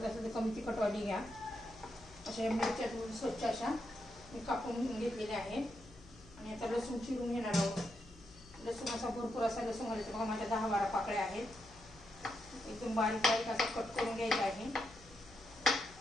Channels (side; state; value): left; noise; hum, 22 dB below the sound